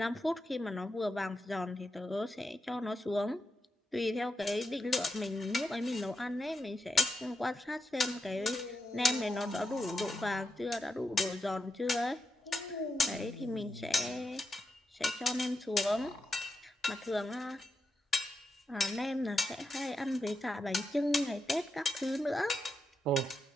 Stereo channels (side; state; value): both; normal; correlation 0.86